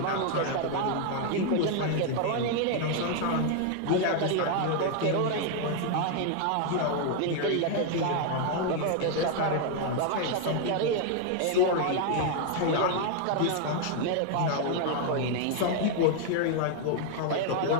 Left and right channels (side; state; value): both; different; correlation 0.00